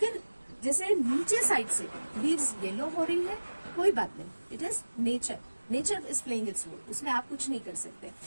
जैसे नीचे साइड से लीव्स येलो हो रही है, कोई बात नहीं, it is nature, nature is playing its role, उसमें आप कुछ नहीं कर सकते,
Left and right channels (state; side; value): inverted; both; correlation -1.00